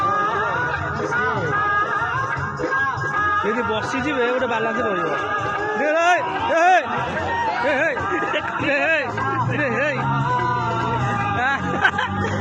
ଯଦି ବସିଯିବେ ଗୋଟେ ବାଲାନ୍ସ ରହିବ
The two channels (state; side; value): identical; both; correlation 1.00